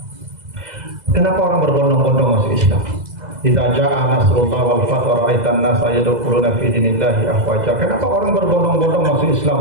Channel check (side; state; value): left; late; 2.0 ms